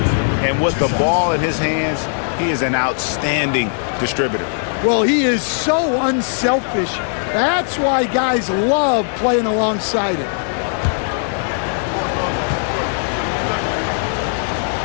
And with the ball in his hands, he is an outstanding distributor. Well, he is so unselfish. That's why guys love playing alongside him.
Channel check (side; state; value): right; silent; digital silence